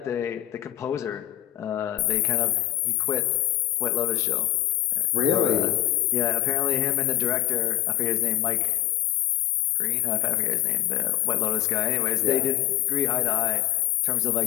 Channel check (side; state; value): right; quieter; 14.1 dB